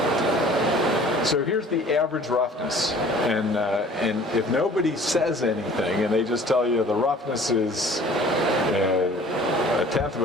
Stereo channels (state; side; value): normal; both; correlation 0.50